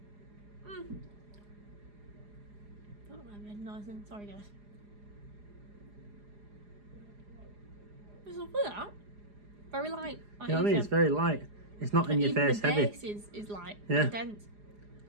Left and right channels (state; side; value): late; left; 4.9 ms